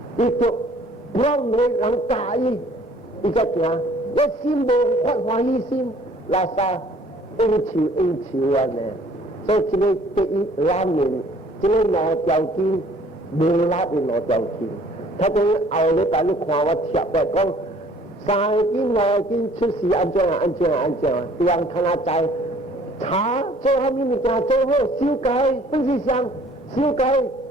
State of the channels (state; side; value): normal; both; correlation 0.56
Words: 伊就让你人介意，伊才行。我心无发欢喜心，拉萨应酬安尼。所以这个第一拉面，这个老条件无拉的老条件，他等后礼拜你看我贴来讲，3斤5斤出事安怎对人看下在查做下面物件做好修改，不是想修改，